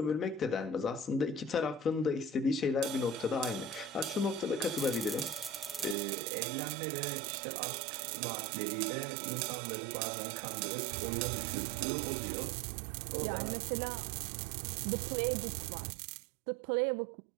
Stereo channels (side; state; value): left; drops out; at 6.0 s